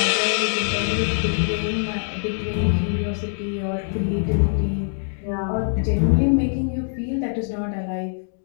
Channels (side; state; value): right; silent; digital silence